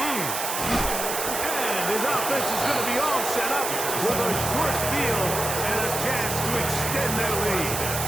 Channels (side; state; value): right; noise; hiss, 3 dB below the sound